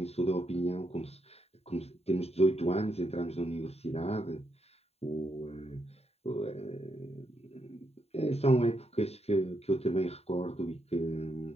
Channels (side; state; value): right; late; 0.30 ms